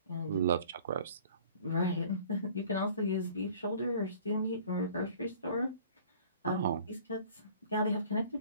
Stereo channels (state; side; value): inverted; both; correlation -0.49